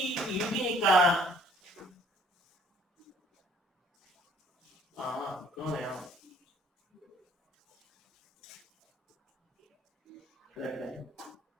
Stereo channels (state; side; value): normal; both; correlation 0.58